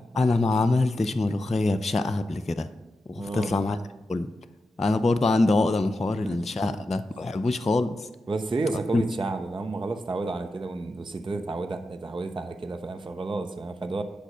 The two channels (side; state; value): both; normal; correlation 0.89